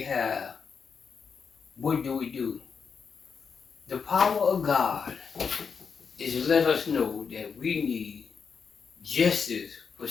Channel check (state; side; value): quieter; right; 6.0 dB